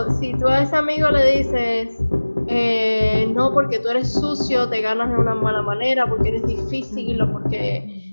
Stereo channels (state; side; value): inverted; both; correlation -1.00